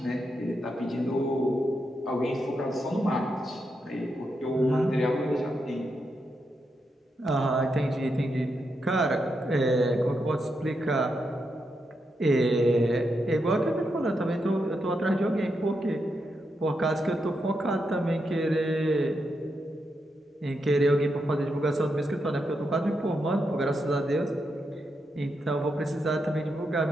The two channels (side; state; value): both; normal; correlation 0.84